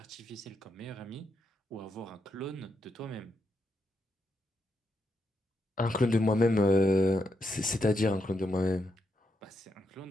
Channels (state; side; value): normal; both; correlation 0.82